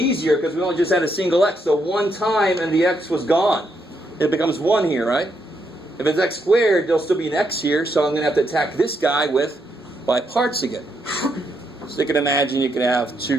because we only just had a single x. So one time and the x was gone. It becomes 1 here, right? If it's x squared, there'll still be an x here. So I'm going to have to attack this guy with by parts again. So you can imagine you can have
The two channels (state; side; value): normal; both; correlation 0.78